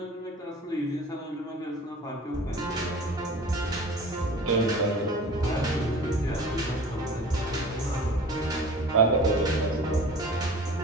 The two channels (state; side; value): normal; both; correlation 0.42